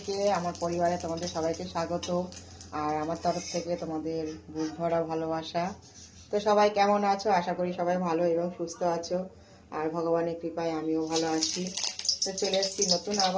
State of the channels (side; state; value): both; identical; correlation 1.00